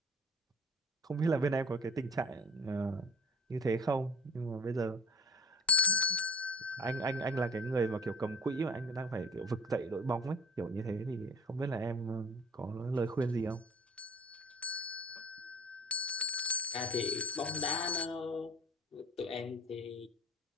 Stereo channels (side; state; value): both; normal; correlation 0.42